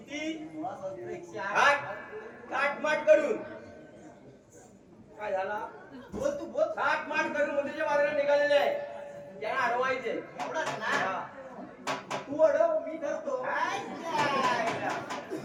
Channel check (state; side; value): identical; both; correlation 1.00